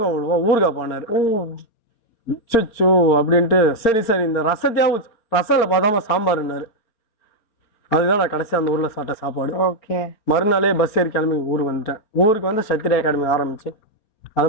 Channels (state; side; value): late; right; 4.4 ms